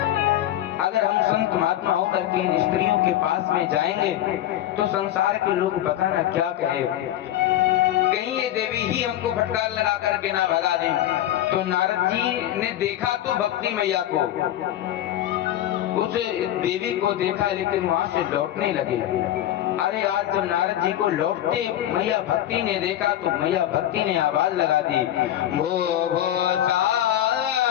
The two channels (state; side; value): quieter; right; 12.6 dB